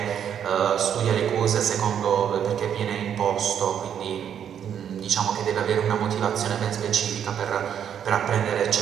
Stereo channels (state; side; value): quieter; left; 8.9 dB